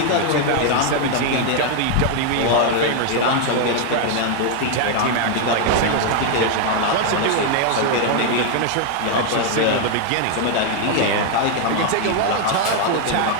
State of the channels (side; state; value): both; different; correlation 0.00